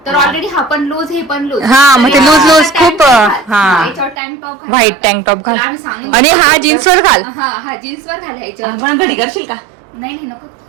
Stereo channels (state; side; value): drops out; left; at 4.2 s